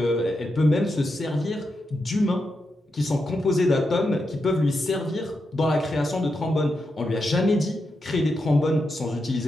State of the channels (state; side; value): normal; both; correlation 0.86